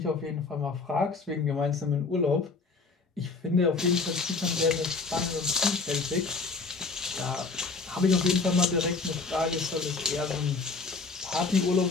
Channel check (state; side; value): quieter; right; 4.2 dB